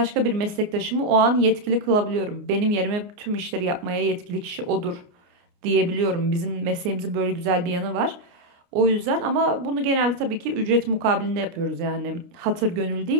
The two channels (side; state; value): left; late; 29 ms